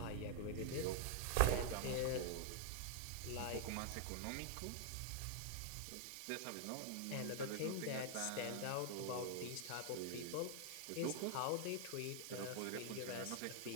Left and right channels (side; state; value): both; different; correlation 0.00